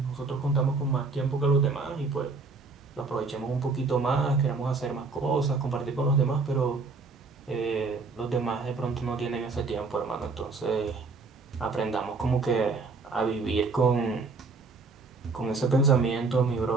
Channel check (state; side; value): quieter; left; 4.1 dB